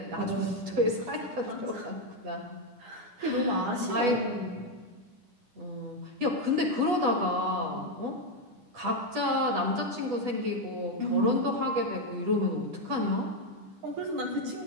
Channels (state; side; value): late; left; 10 ms